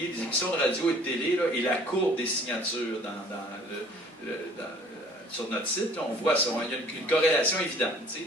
des émissions de radio et de télé, là, et la courbe des signatures sur notre site, là, on voit ça. Il y a une corrélation évidente.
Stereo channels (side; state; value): both; normal; correlation 0.53